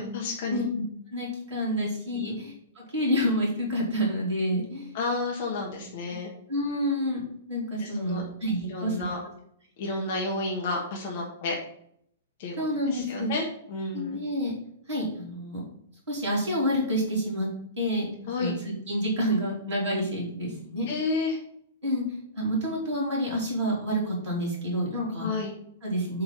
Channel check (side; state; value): both; inverted; correlation -0.36